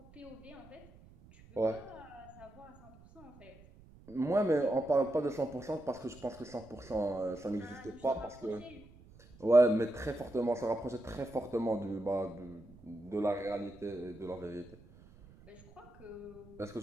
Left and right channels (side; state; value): right; noise; rumble, 22 dB below the sound